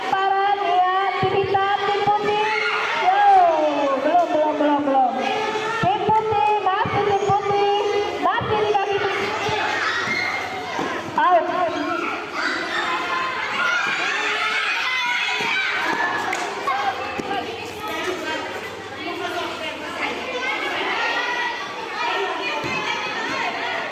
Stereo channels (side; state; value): both; identical; correlation 1.00